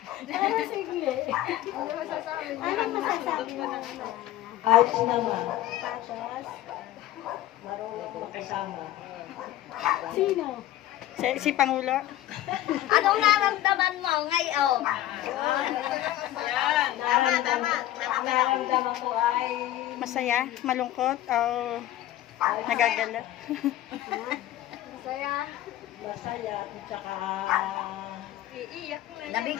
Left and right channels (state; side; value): quieter; right; 13.9 dB